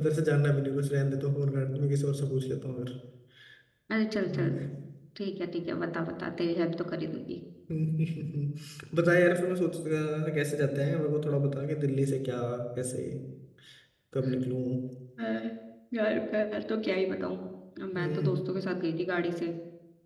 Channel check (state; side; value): identical; both; correlation 1.00